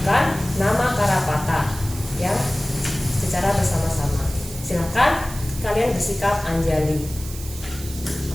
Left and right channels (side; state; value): right; noise; hiss, 13 dB below the sound